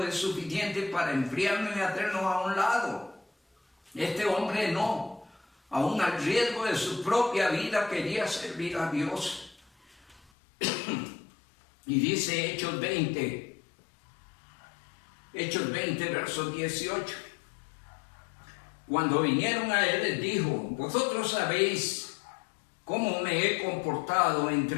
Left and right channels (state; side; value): drops out; right; at 10.3 s